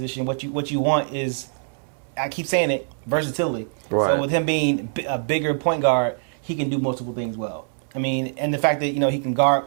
what you want is, I keep saying it, versatility. Right. So with him being a bigger point guard, he can do multiple things well. I mean, and the fact that he can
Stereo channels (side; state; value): left; silent; 63 dB below the other